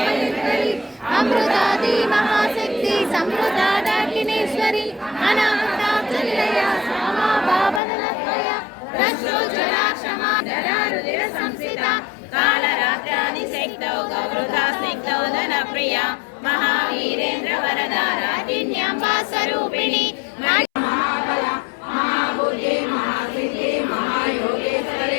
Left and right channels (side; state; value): right; drops out; at 7.8 s